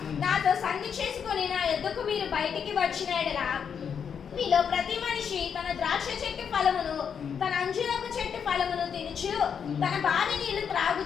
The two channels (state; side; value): quieter; right; 7.2 dB